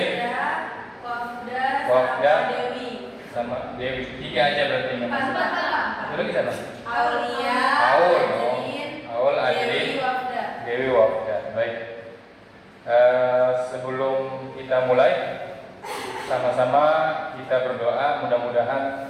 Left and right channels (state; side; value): identical; both; correlation 1.00